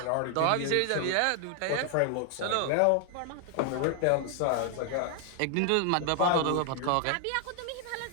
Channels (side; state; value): both; different; correlation 0.00